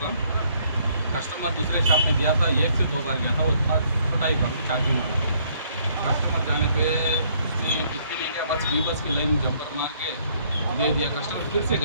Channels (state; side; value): inverted; both; correlation -0.65